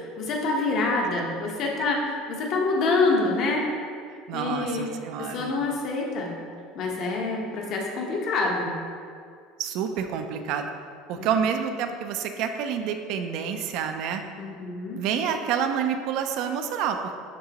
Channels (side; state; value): both; normal; correlation 0.37